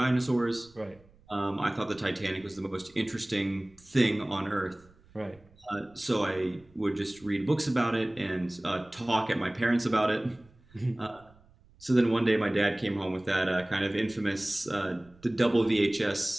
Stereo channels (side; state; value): right; noise; rumble, 28 dB below the sound